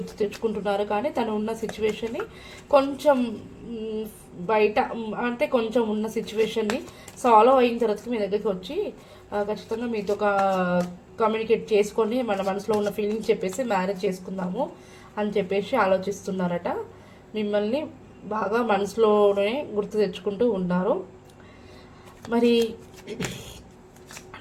తెచ్చుకుంటున్నారు. కానీ తను ఉన్న సిచ్యువేషన్ని కొంచెం బయట అంటే కొంచెం ఉన్న సిచ్యువేషన్ని సాల్వ్ అయిన తర్వాత మీ దగ్గరికి వచ్చి ఖచ్చితంగా మీతో కమ్యూనికేట్ చేసుకొని మన మనసులో ఉన్న ఫీలింగ్స్ చెప్పేసి మ్యారేజ్ చేసుకుందాము అని చెప్పేసి ఆలోచిస్తున్నారట. మిమ్మల్ని బాగా మనసులోనే గుర్తు తెచ్చుకుంటూ ఉన్నారు. మరి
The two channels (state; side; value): identical; both; correlation 1.00